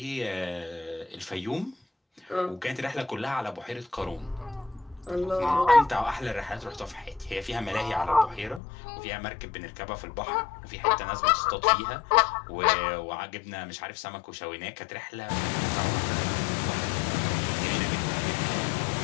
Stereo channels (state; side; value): drops out; right; at 8.6 s